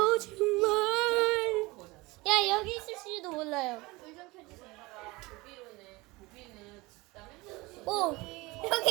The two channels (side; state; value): left; quieter; 22.7 dB